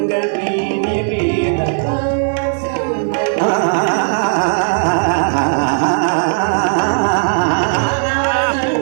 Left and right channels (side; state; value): left; silent; digital silence